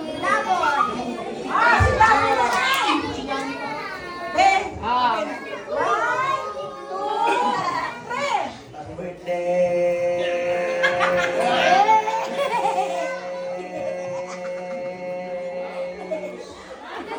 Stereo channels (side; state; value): both; identical; correlation 1.00